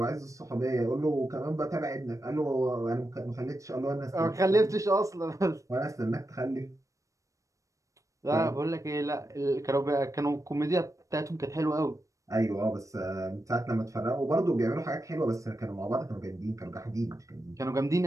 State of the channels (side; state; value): left; late; 0.16 ms